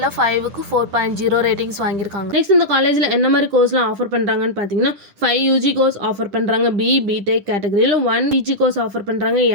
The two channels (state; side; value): late; left; 10 ms